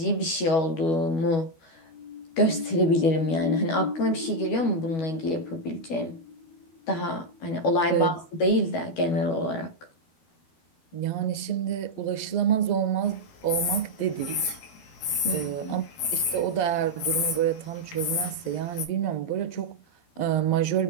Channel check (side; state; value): right; late; 12 ms